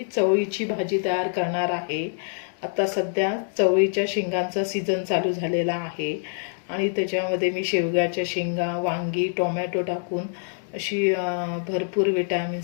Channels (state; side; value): silent; right; 62 dB below the other